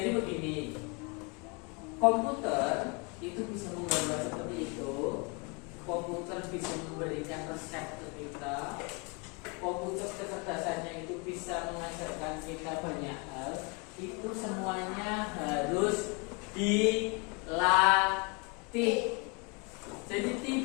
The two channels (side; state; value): right; quieter; 30.3 dB